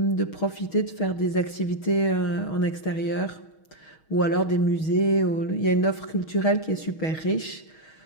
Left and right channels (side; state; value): right; late; 6.3 ms